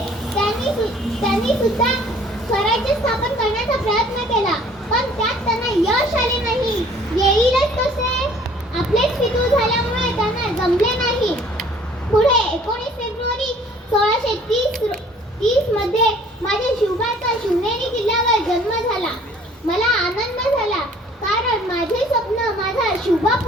त्यांनी सुद्धा स्वराज्य स्थापन करण्याचा प्रयत्न केला, पण त्यात त्यांना यश आले नाही. येईलच कसे, आपलेच पितृ झाल्यामुळे त्यांना जमले नाही. पुढे 19 फेब्रुवारी 1630 मध्ये माझ्या शिवबाचा शिवनेरी किल्ल्यावर जन्म झाला. मला आनंद झाला, कारण माझे स्वप्न माझा शिवबा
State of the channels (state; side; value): normal; both; correlation 0.55